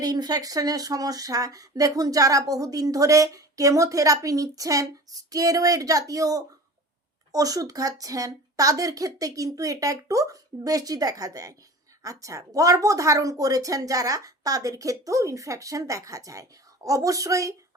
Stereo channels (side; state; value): both; normal; correlation 0.38